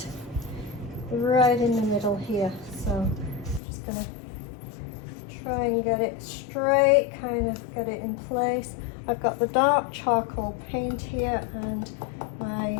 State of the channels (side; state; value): right; drops out; at 3.6 s